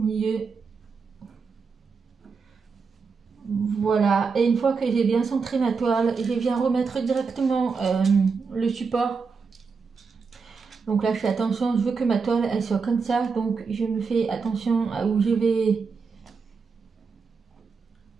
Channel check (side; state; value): left; quieter; 5.1 dB